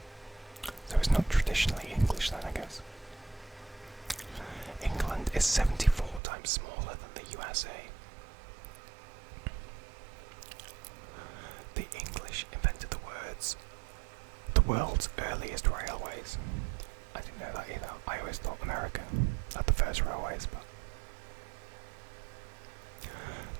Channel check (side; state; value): left; drops out; at 6.2 s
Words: So it's not traditionally English then, I guess. England is 74 times smaller than the USA. The English invented the world's earliest railways. I didn't know that either. I always thought America had the first railways, but